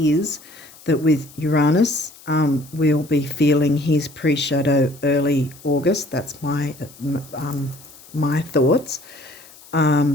that with Uranus, we'll be feeling his pre-shadow early August. That's my thoughts.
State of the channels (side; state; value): left; noise; hiss, 22 dB below the sound